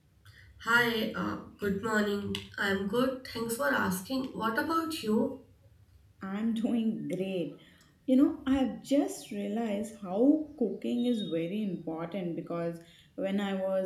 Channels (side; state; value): both; identical; correlation 1.00